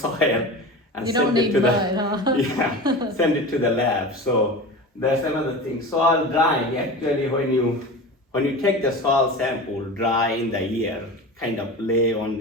soil and You send don't it need to mud, the huh? yeah, send it to the lab. So that's another thing. Soil drying, actually when you take the soil sample dry in the air, kind of lay on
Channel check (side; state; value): both; normal; correlation 0.30